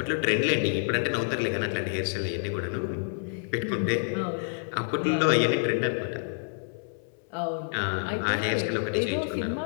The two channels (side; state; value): right; silent; 59 dB below the other